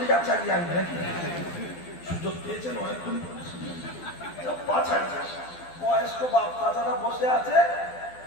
চালিয়ে আনবে নাকি? সুযোগ পেয়েছেন অনেকক্ষণ, 5,000 বয়স্ক বাপ চাচারা বসে আছে,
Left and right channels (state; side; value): late; right; 12 ms